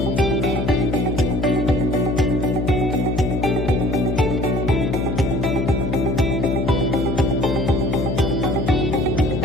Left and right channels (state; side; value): noise; left; hum, 2 dB below the sound